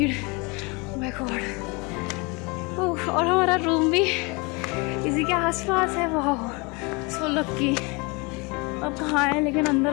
My God. और हमारा रूम भी इसी के आसपास है। वाह, सो लकी। अब कहाँ है लेकिन अंदर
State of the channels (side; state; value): right; quieter; 28.6 dB